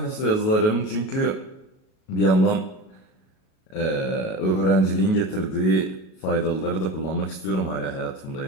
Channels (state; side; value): late; right; 37 ms